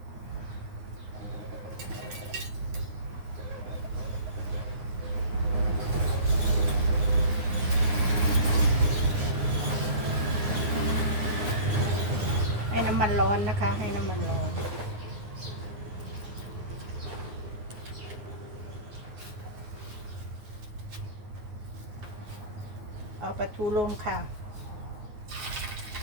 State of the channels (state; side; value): late; left; 9.6 ms